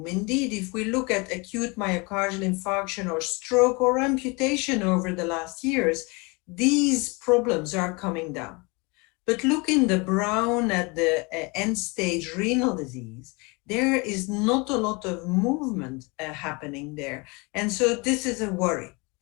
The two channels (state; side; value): quieter; right; 28.2 dB